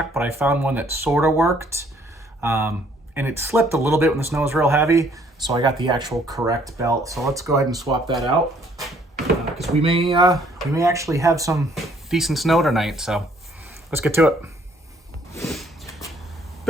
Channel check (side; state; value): both; normal; correlation 0.63